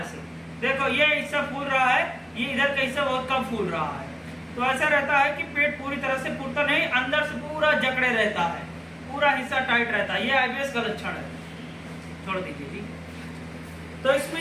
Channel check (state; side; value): identical; both; correlation 1.00